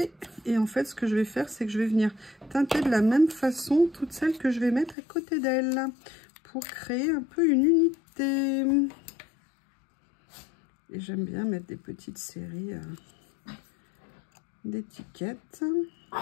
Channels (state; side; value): drops out; right; at 5.0 s